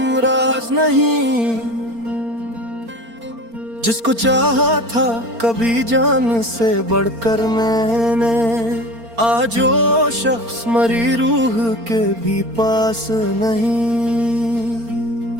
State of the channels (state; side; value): late; left; 4.3 ms